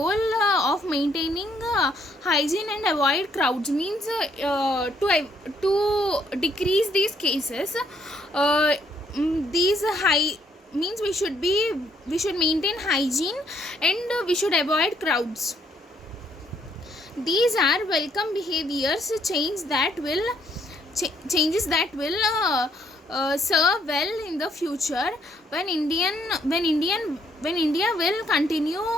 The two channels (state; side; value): normal; both; correlation 0.69